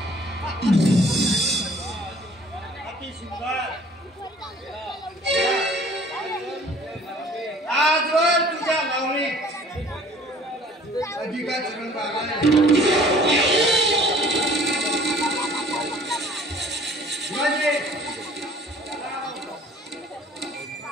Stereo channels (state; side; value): normal; both; correlation 0.52